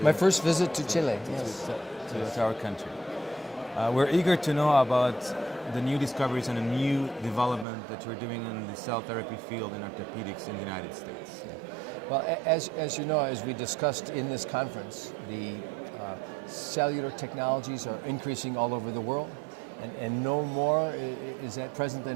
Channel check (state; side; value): drops out; left; at 7.7 s